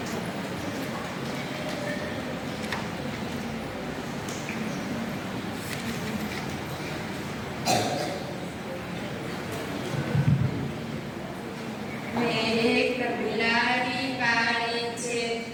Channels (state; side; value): identical; both; correlation 1.00